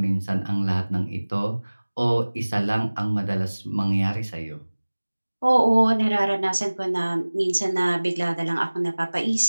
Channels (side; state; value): both; inverted; correlation -1.00